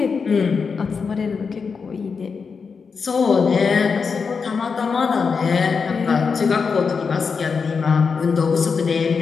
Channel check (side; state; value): right; quieter; 5.4 dB